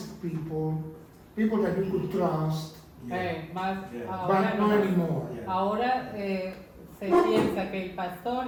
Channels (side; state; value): both; identical; correlation 1.00